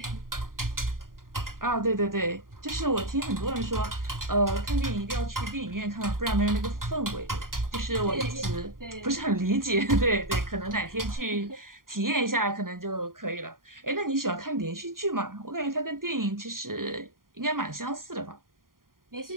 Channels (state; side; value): late; left; 0.91 ms